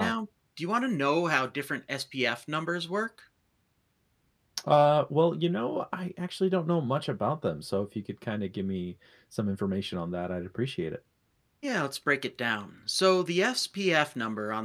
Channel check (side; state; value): both; identical; correlation 1.00